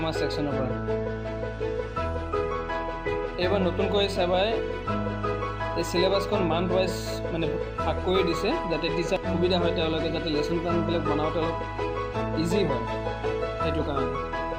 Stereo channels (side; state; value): both; identical; correlation 1.00